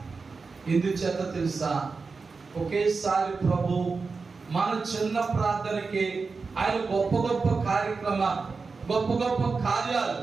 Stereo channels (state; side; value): quieter; left; 4.5 dB